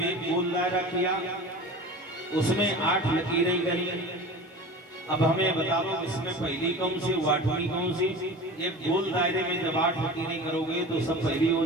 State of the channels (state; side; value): normal; both; correlation 0.35